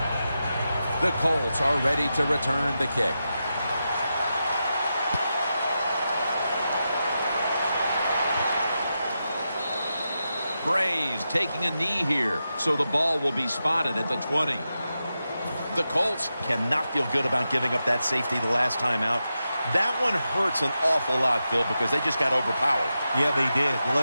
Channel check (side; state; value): both; inverted; correlation -0.89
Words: The Colts are ready to return the kick. Brays taking a knee here, so the ball will be spotted at the 20. The Colts cannot feel good about giving up that safety the last time out. That one hurts an awful lot, Phil, because they just got overpowered. Yeah, they did. Well,